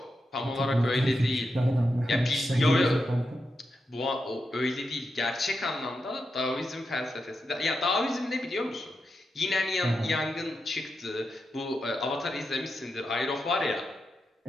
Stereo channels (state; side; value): normal; both; correlation 0.87